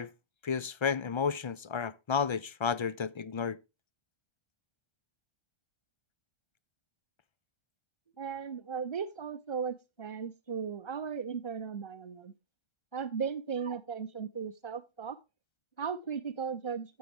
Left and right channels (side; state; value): right; late; 1.3 ms